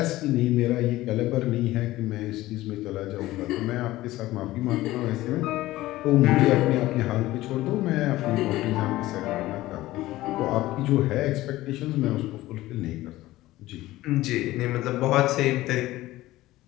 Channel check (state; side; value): quieter; right; 16.8 dB